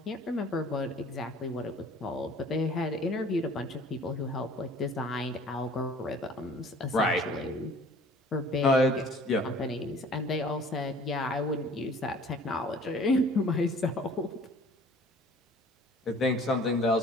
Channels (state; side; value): normal; both; correlation 0.50